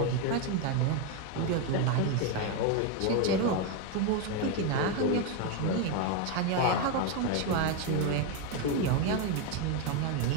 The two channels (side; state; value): both; different; correlation 0.02